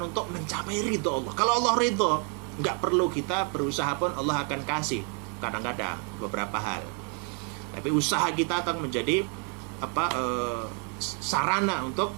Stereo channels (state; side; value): quieter; left; 37.4 dB